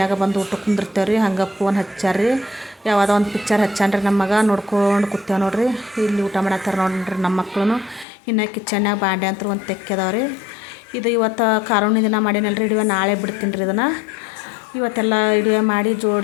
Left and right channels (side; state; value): right; drops out; at 8.1 s